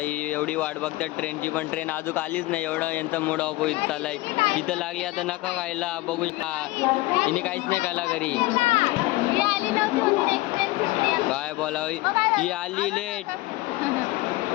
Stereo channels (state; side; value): quieter; right; 19.5 dB